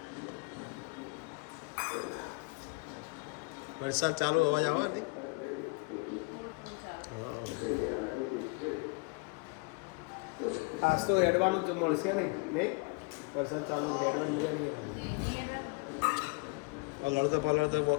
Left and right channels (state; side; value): quieter; right; 29.0 dB